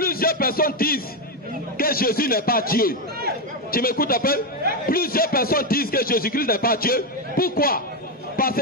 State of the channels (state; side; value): normal; both; correlation 0.07